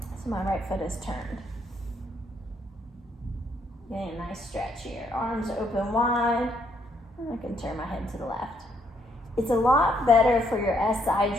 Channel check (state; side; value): normal; both; correlation 0.72